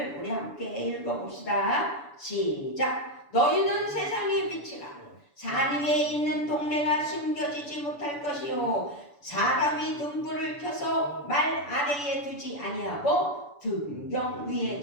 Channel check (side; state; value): right; late; 6.9 ms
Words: 우리 함께 읽어봅시다. 시작. 너희는 세상의 빛이라. 산 위에 있는 동네가 숨겨지지 못할 것이요 사람이 등불을 켜서 말 아래에 두지 아니하고 등경 위에